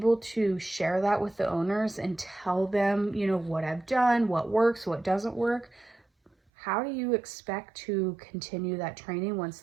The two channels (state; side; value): drops out; left; at 6.3 s